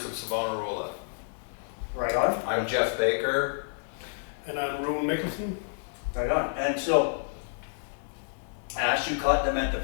of Savonarola. Right on. I'm Jeff Baker. And I'm Rowan Mickelson. Right on. And so, Ash, you caught them at the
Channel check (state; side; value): silent; right; digital silence